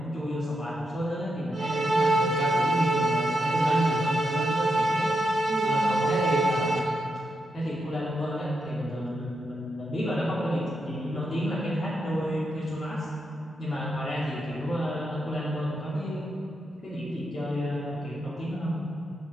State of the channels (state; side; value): normal; both; correlation 0.84